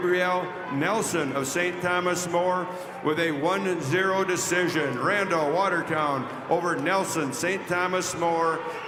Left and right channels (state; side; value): identical; both; correlation 1.00